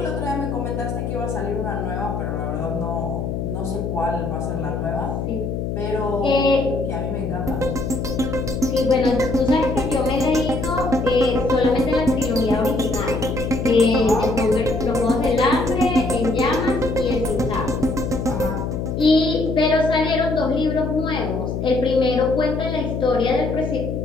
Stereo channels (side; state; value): left; noise; hum, 3 dB below the sound